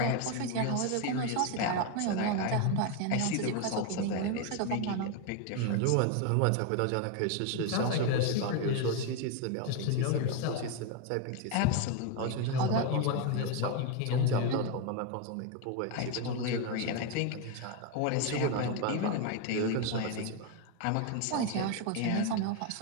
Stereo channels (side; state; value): both; different; correlation 0.01